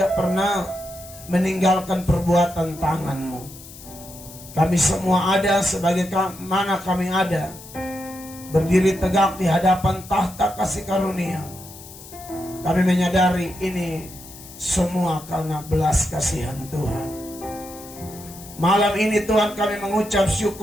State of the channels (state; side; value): noise; left; hiss, 17 dB below the sound